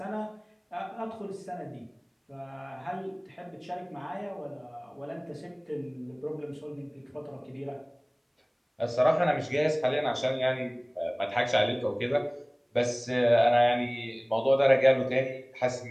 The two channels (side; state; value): both; identical; correlation 1.00